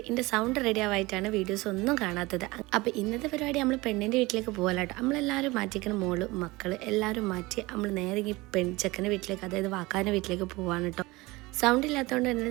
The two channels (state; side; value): quieter; left; 21.8 dB